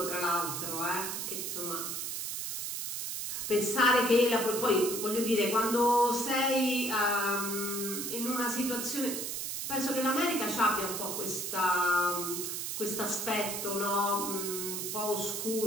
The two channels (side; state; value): right; noise; hiss, 4 dB below the sound